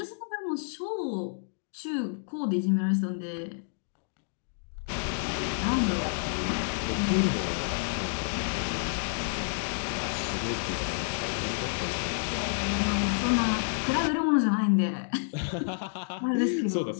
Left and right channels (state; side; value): silent; right; digital silence